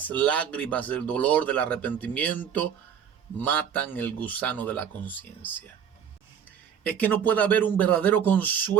lágrimas, del dolor, del arrepentimiento, matan el gusano de la conciencia. Es que no puede haber un verdadero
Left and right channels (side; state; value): left; quieter; 8.4 dB